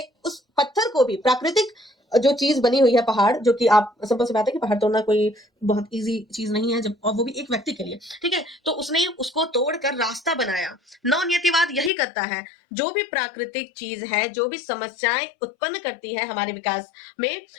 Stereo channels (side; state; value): right; drops out; at 11.9 s